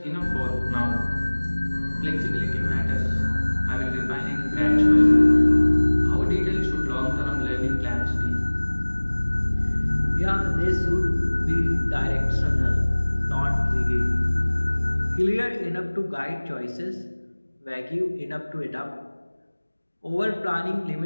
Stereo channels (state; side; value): inverted; both; correlation -1.00